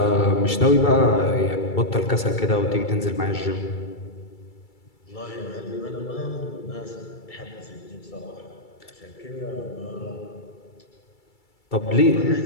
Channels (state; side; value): late; right; 2.3 ms